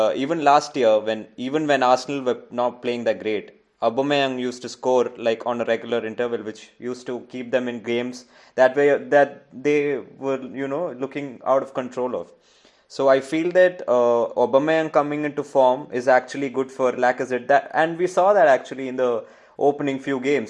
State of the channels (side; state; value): both; identical; correlation 1.00